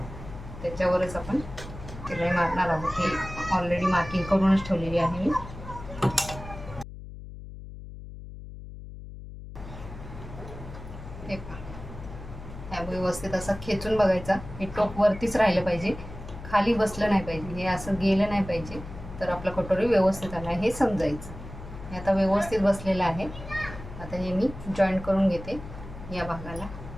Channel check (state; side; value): noise; left; hum, 13 dB below the sound